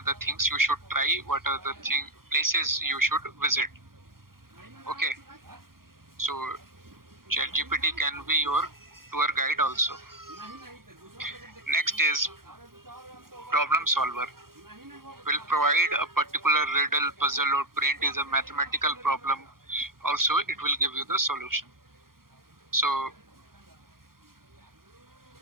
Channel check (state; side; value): late; left; 0.92 ms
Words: the things you should try, what are the places you should visit. Okay, so ChatGPT can be your tour guide also. Next is problem solver. Will provide a particular riddle, puzzle, or print is a mathematical problem. Also, it will give you the solution. So